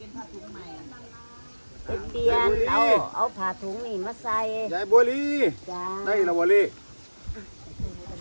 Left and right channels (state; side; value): inverted; both; correlation -1.00